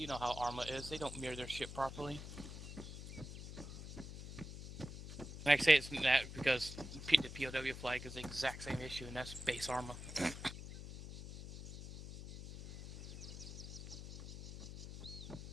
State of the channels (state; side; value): noise; left; hum, 10 dB below the sound